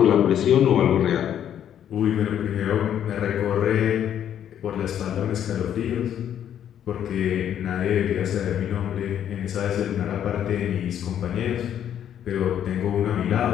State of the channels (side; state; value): right; quieter; 9.9 dB